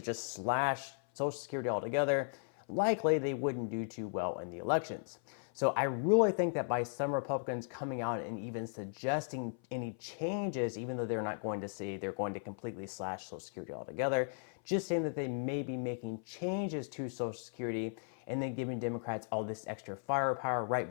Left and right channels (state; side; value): silent; right; 53 dB below the other